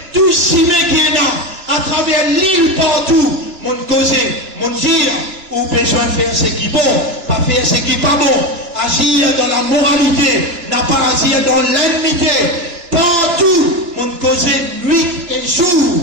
tout cimé qui est là, à travers l'île partout, mon causé, mon dire, ou besoin de faire ce qui est bon, pas faire ce qui n'est pas bon, agir dans la moralité, n'a pas agir dans l'ennemité. Partout, mon causé nuit et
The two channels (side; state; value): left; late; 2.9 ms